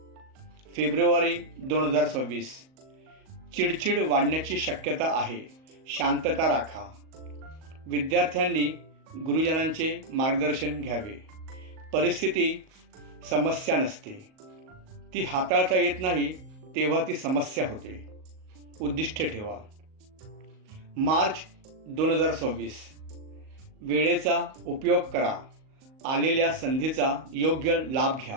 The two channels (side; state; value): left; late; 38 ms